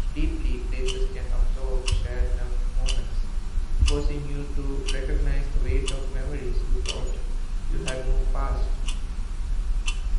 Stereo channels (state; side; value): identical; both; correlation 1.00